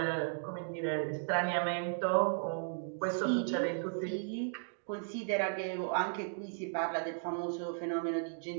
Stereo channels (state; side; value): silent; left; digital silence